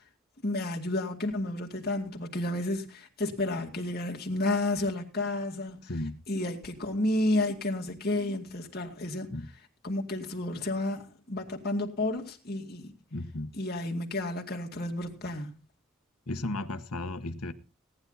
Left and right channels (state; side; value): normal; both; correlation 0.47